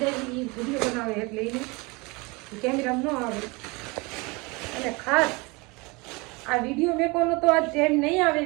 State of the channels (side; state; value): left; quieter; 26.4 dB